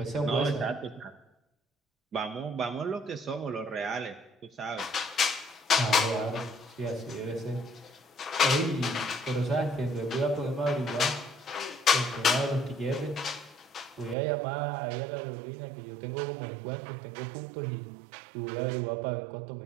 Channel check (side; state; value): left; drops out; at 14.2 s